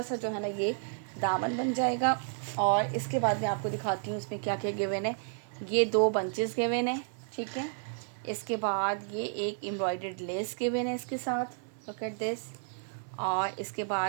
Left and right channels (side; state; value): left; silent; 57 dB below the other